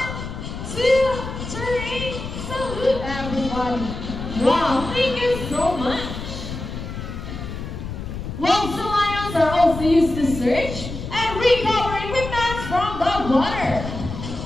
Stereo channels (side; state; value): left; noise; rumble, 8 dB below the sound